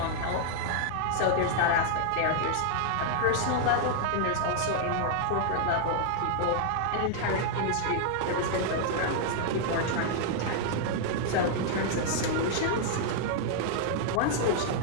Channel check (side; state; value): both; different; correlation -0.01